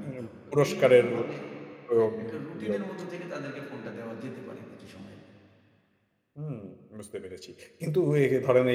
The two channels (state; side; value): identical; both; correlation 1.00